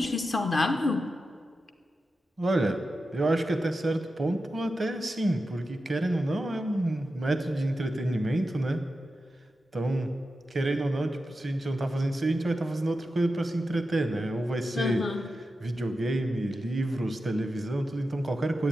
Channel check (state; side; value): normal; both; correlation 0.91